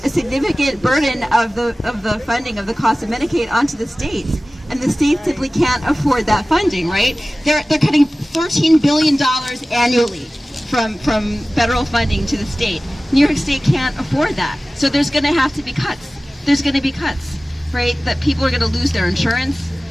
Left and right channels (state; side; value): normal; both; correlation 0.97